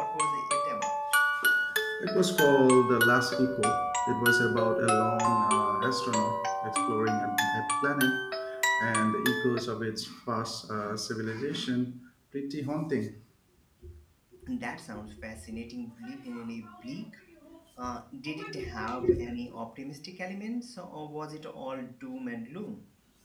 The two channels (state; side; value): identical; both; correlation 1.00